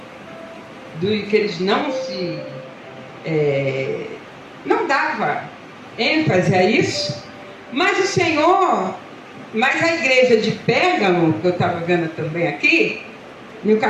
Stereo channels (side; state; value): both; identical; correlation 1.00